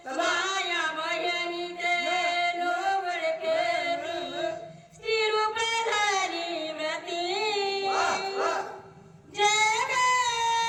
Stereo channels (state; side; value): identical; both; correlation 1.00